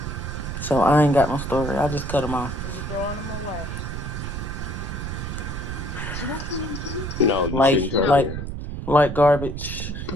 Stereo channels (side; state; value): right; noise; rumble, 6 dB below the sound